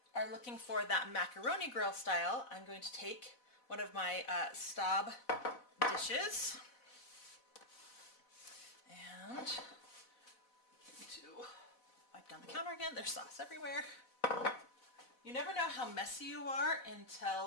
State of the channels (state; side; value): late; right; 4.0 ms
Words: are looking for that macaroni grill style, I'm going to take one of my Staub dishes and to wipe down the counter again. There's sauce everywhere. You never know how messy you are